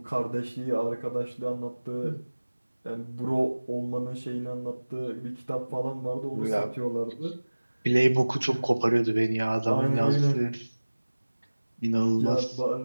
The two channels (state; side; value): inverted; both; correlation -1.00